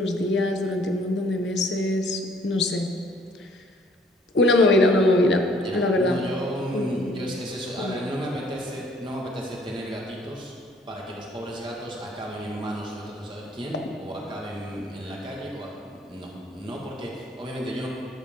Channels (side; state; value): both; normal; correlation 0.60